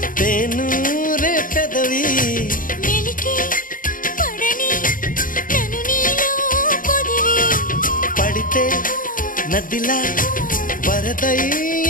తేను రే పెదవి మెలికి పడని నన్ను నీలో పొదివి పడితే నదిలా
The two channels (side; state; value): right; late; 0.39 ms